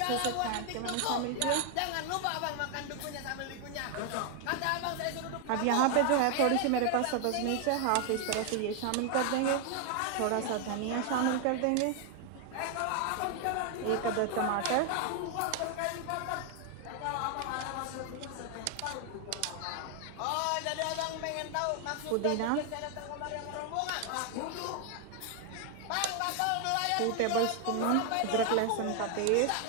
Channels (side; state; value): both; different; correlation 0.01